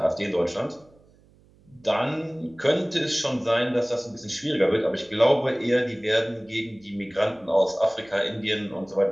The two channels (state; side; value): noise; right; hum, 29 dB below the sound